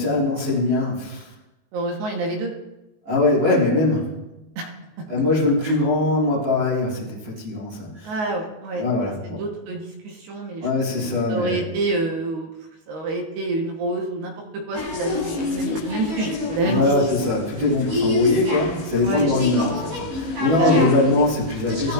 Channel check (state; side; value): late; left; 19 ms